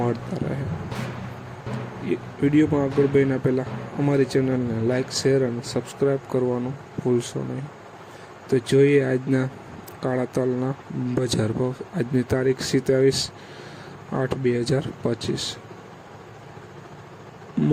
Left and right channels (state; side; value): identical; both; correlation 1.00